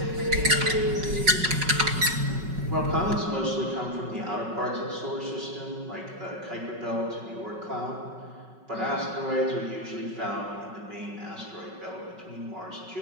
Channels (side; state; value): left; late; 5.3 ms